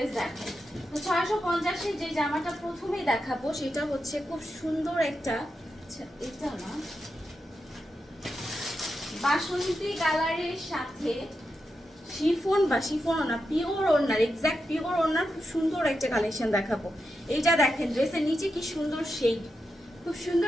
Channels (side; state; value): both; normal; correlation 0.87